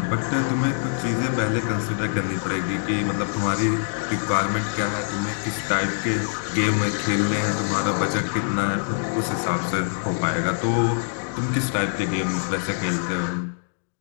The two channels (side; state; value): right; silent; digital silence